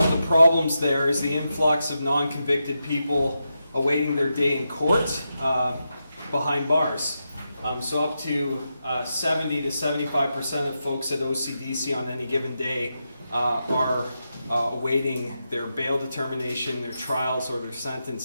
the problems there is the influx of non-convicted people awaiting their day in court behind bars. So up to 70 to 75% of folks at OCDC on any given day are awaiting their bail determination, their trials, or their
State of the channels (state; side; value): inverted; both; correlation -0.87